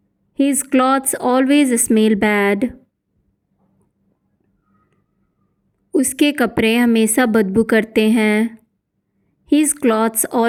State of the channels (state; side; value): identical; both; correlation 1.00